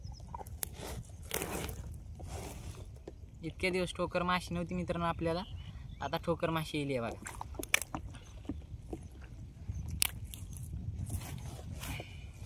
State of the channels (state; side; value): identical; both; correlation 1.00